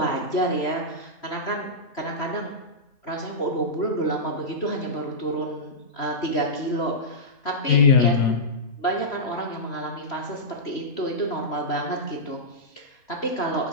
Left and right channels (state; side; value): late; right; 3.1 ms